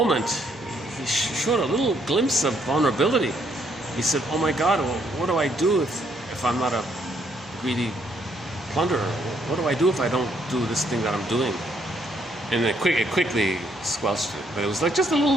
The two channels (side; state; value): both; normal; correlation 0.71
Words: he showed a little glimpse of vulnerability. He said, oh my God, well, what do I do if I'm not a greedy plunderer? What do I do if I don't do this thing that I'm doing? And it quickly squelched it. But it was like just a